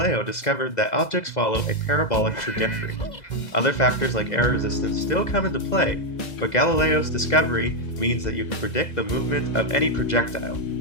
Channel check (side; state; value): right; late; 2.0 ms